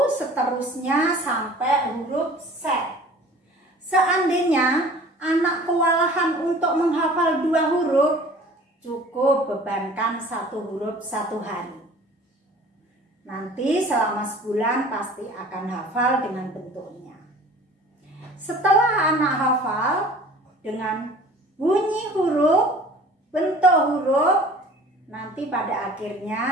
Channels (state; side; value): normal; both; correlation 0.46